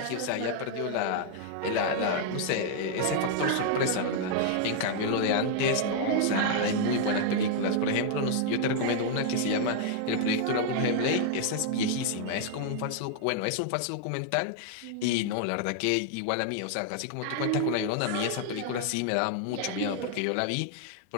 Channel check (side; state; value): both; different; correlation 0.00